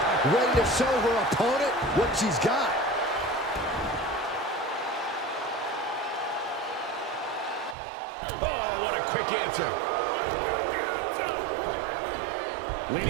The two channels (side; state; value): left; drops out; at 7.8 s